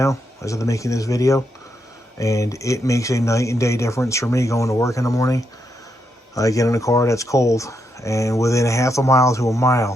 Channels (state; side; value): normal; both; correlation 0.81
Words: as of making this video, and it makes a night and day difference for me going to work in the morning. I get in a car that's cold, and within a half a mile to a